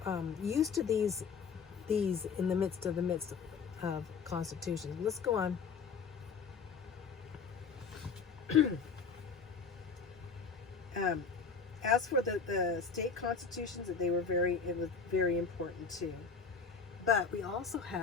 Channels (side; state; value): right; quieter; 5.6 dB